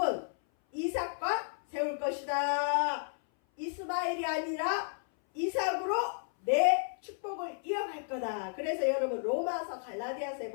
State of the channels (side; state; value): right; silent; 56 dB below the other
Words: 이삭과 세울 것이다. 이스마엘이 아니라 이삭으로 내 축복을 이어갈 거다. 그래서 여러분 로마서 갈라디아서에